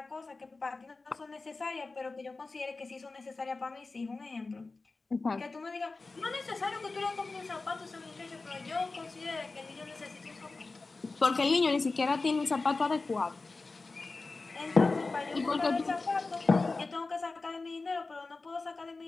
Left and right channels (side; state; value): right; quieter; 3.7 dB